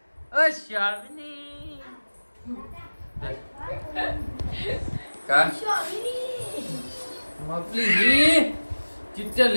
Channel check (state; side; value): inverted; both; correlation -1.00